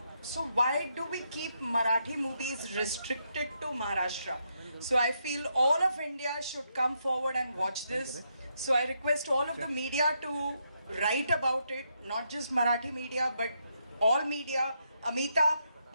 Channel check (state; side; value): inverted; both; correlation -0.79